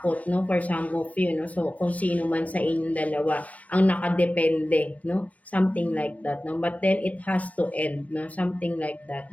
no, for some of you, no. So, kung sino man sa inyong dalawa ang nakadepende, no, something like that, no. But then, it has to end, no, something like that,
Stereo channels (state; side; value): late; right; 0.068 ms